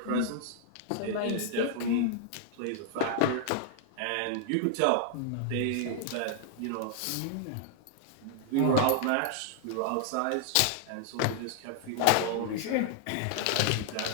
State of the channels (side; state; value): both; different; correlation 0.00